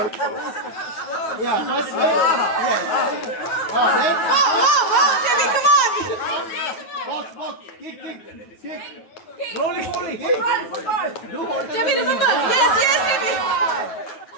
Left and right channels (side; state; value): right; late; 9.3 ms